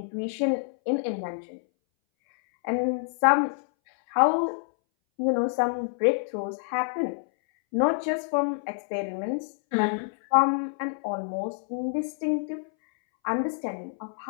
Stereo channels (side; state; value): right; silent; 60 dB below the other